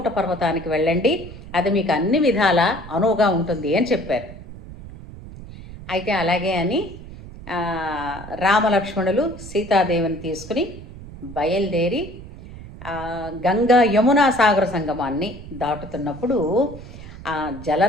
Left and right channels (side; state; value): right; noise; rumble, 15 dB below the sound